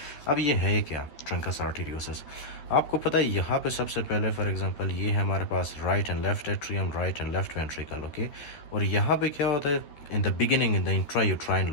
अब ये है क्या ट्रंकस आर्टेरियोसिस? आपको पता है यहाँ पे सबसे पहले फॉर एग्जांपल ये है हमारे पास right and left atrium, right and left ventricle, okay. और यहाँ पे क्या होता है in the beginning, in the intrauterine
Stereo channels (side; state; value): right; late; 13 ms